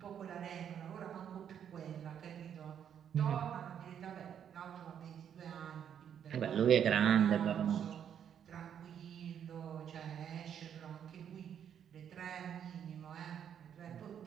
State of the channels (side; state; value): left; quieter; 8.8 dB